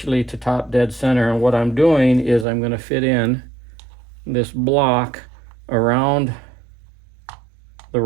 to top dead center, and what I'm doing is I'm going to fit in this block around the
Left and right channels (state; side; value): drops out; left; at 2.5 s